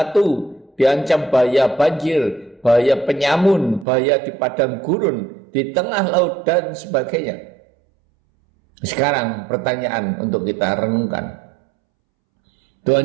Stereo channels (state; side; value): drops out; left; at 3.9 s